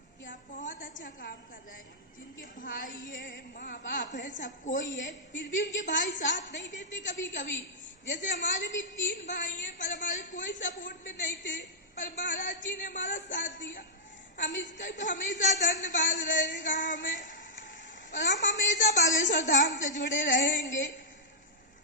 कि आप बहुत अच्छा काम कर रहे हैं, जिनके भाई है, माँ बाप है, सब कोई है, फिर भी उनके भाई साथ नहीं देते कभी कभी। जैसे हमारे भी 3 भाई हैं, पर हमारे कोई सपोर्ट में नहीं थे, पर महाराज जी ने हमारा साथ दिया। हम इसका हमेशा धन्यवाद रहेगा हमें, और हम हमेशा बागेश्वर धाम से जुड़े रहेंगे।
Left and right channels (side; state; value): both; normal; correlation -0.08